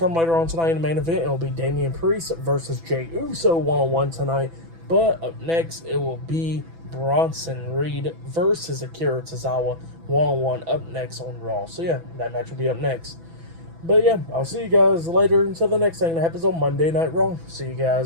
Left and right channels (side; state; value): left; late; 6.0 ms